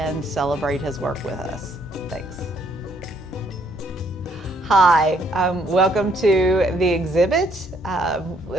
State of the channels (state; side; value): normal; both; correlation 0.68